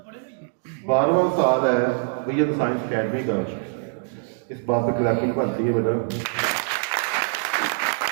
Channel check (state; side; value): silent; left; digital silence